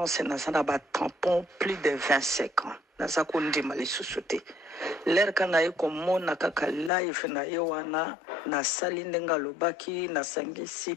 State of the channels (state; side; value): drops out; right; at 6.9 s